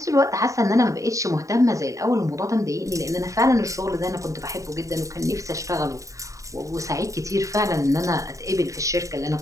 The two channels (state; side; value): late; left; 0.16 ms